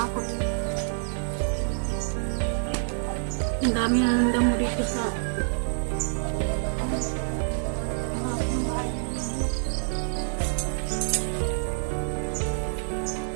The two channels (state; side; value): silent; left; 60 dB below the other